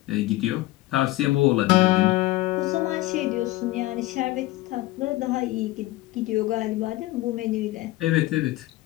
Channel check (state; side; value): quieter; right; 18.1 dB